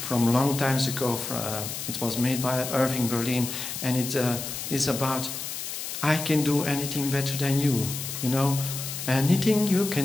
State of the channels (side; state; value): left; noise; hiss, 6 dB below the sound